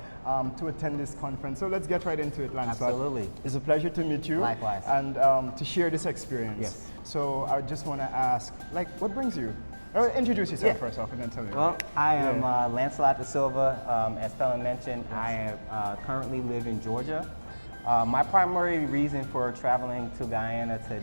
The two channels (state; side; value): inverted; both; correlation -1.00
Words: to attend this conference. So let's get right into it, Lancelot. Absolutely. It's a pleasure to meet you. Likewise. And to share this experience. Yes. So I just want to ask, like, what brings you? Or introduce yourself first off and then tell me. Well, I am Lancelot da Silva. As Felon mentioned, I currently live in Georgia. My primary reason for traveling to Guyana